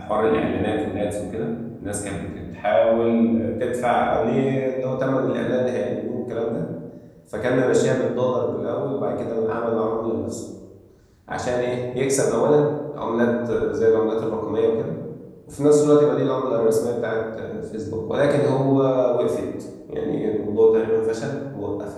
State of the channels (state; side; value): identical; both; correlation 1.00